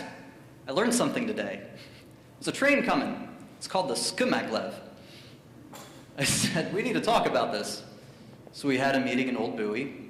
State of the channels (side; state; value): both; identical; correlation 1.00